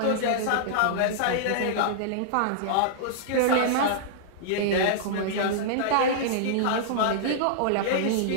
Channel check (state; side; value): different; both; correlation -0.02